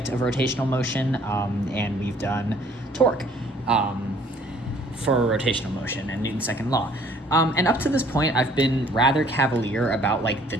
of rotational motion, and we've done torque for rotational motion and Newton's second law. And up to this point, I've been rather cavalier about like the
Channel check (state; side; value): normal; both; correlation 0.59